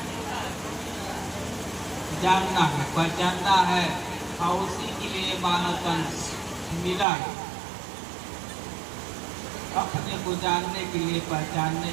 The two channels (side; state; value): left; drops out; at 7.1 s